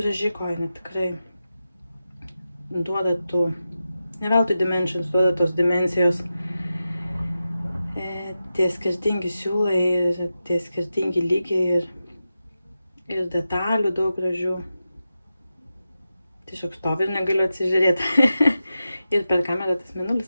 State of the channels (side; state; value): both; inverted; correlation -0.91